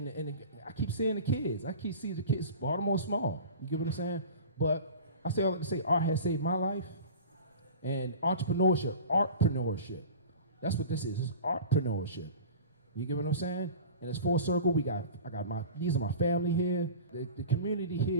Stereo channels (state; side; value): inverted; both; correlation -0.37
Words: And I keep seeing the kids. I keep seeing the kids. Baltimore small. You get what I'm saying? But I say all that to say art has saved my life. And artpreneurship. That's what this is. It's artpreneurship. You get what I'm saying? And it's full circle. These are my family here. The community